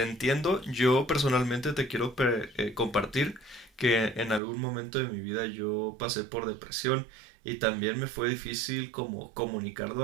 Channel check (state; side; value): drops out; left; at 4.4 s